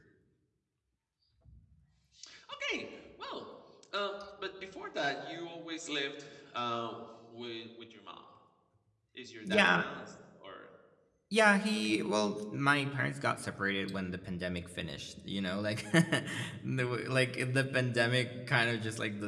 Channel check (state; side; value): identical; both; correlation 1.00